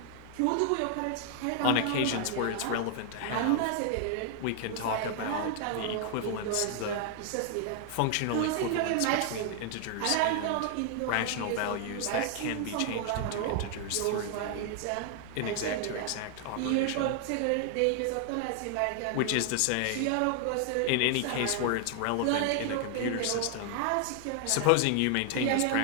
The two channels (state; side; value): different; both; correlation 0.00